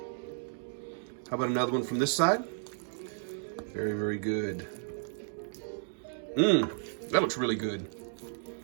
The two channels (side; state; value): left; silent; digital silence